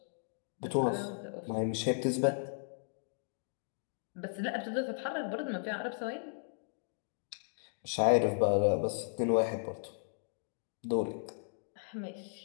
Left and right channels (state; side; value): silent; right; digital silence